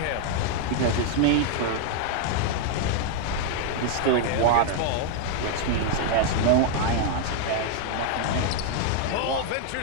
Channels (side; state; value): both; different; correlation 0.00